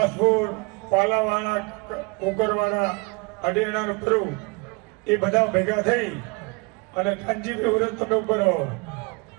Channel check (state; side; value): quieter; left; 29.2 dB